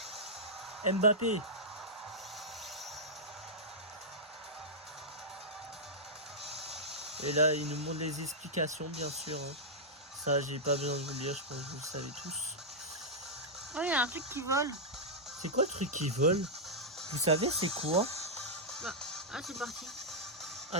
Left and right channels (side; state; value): both; normal; correlation -0.07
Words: Mbappé. Et là, il nous montre les explications, bien sûr. Hein. Ça, j'ai pas besoin de vous le dire, je pense que vous le savez tous. Oh, il y a un truc qui vole. C'est quoi le truc qui vole? Vous savez, c'est quoi? Bah, ah, c'est parti.